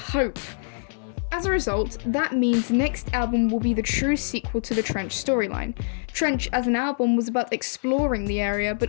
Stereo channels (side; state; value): right; silent; digital silence